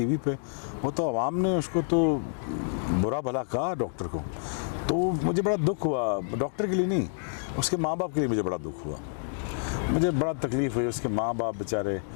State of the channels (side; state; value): right; silent; digital silence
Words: पे, वो तो आवाम ने उसको तो बुरा भला कहा डॉक्टर को, तो मुझे बड़ा दुख हुआ। डॉक्टर के लिए नहीं, उसके माँ बाप के लिए मुझे बड़ा दुख हुआ। मुझे बड़ा तकलीफ़ हुई। उसके माँ बाप बेचारे